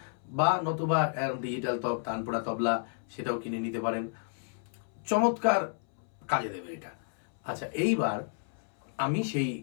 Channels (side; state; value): right; silent; 57 dB below the other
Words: বা নতুবা ডিজিটাল তানপুরা তবলা সেটাও কিনে নিতে পারেন। চমৎকার কাজে দেবে এটা। আচ্ছা, এইবার আমি সেই